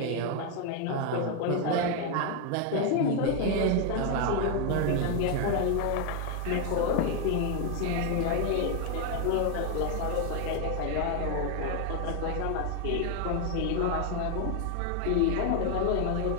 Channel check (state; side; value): different; both; correlation 0.01